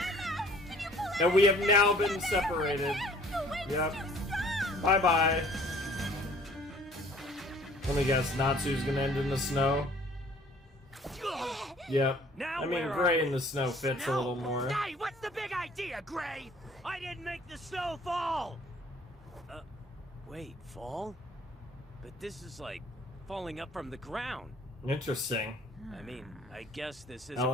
And we have now been separated. Yep. Bye bye. Let me guess. Natsu's gonna end in the snow. Yep. Now I mean, where are gray we? in the snow fits a little more. Hey, what's the big idea, Gray? I didn't make the snow fall. Wait, fall? But this is like falling up from the ground. Interesting. I mean, I guess this isn't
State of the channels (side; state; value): both; normal; correlation 0.54